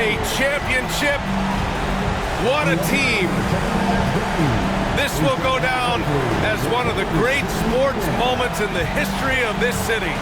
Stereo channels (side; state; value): both; identical; correlation 1.00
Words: a championship. What a team. This will go down as one of the great sports moments in the history of this city.